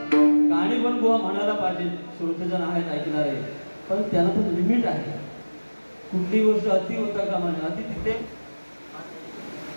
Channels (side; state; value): both; inverted; correlation -1.00